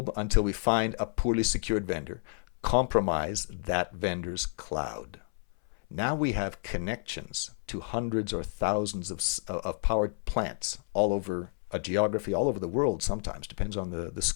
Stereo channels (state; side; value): silent; right; 58 dB below the other